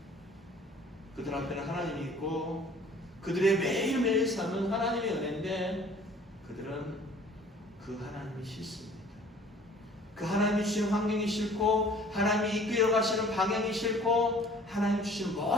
그들 앞에는 하나님이 있고 그들의 매일매일 삶은 하나님의 은혜인데 그들은 그 하나님이 싫습니다. 그 하나님이 주신 환경이 싫고 하나님이 이끌어 가시는 방향이 싫고 하나님 주신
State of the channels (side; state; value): both; normal; correlation 0.51